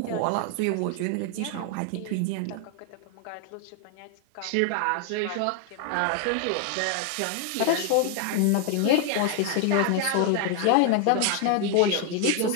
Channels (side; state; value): both; different; correlation 0.00